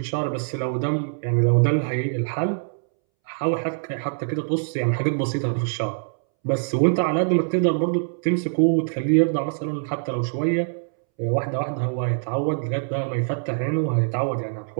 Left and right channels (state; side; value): silent; left; 63 dB below the other